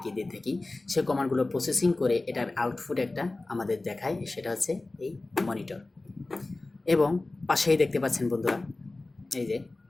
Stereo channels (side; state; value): right; quieter; 3.1 dB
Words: দিয়ে থাকি, সেই কমান্ডগুলো প্রসেসিং করে এটার আউটপুট একটা আমাদের দেখায়, সেটা হচ্ছে এই মনিটর। এবং পাশেই দেখতে পাচ্ছেন বন্ধুরা, এই যে